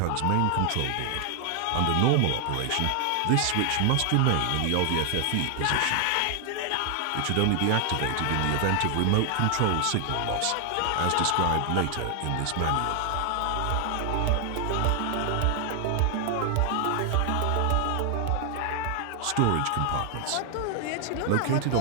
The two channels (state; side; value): different; both; correlation 0.00